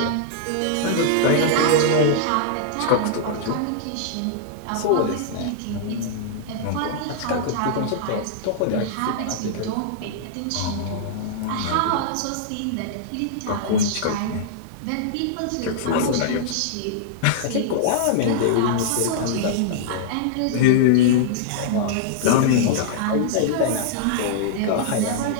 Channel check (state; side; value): different; both; correlation -0.02